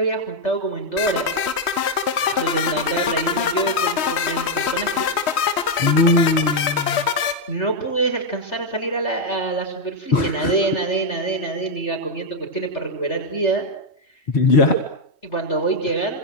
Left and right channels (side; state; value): right; late; 3.1 ms